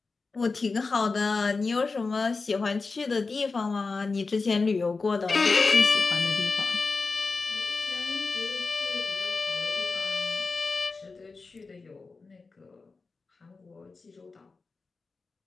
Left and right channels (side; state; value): right; quieter; 4.1 dB